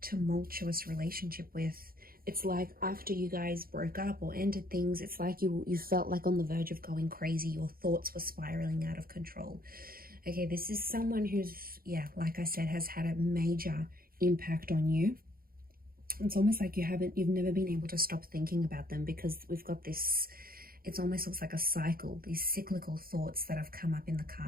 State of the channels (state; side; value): late; left; 0.42 ms